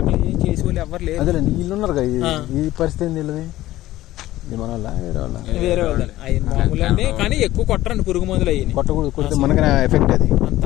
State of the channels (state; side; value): quieter; right; 15.6 dB